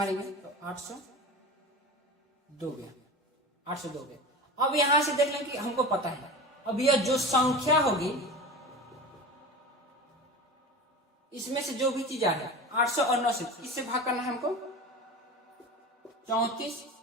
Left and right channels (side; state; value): both; normal; correlation 0.31